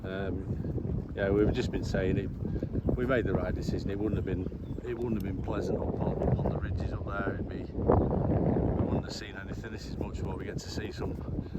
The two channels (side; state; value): both; identical; correlation 1.00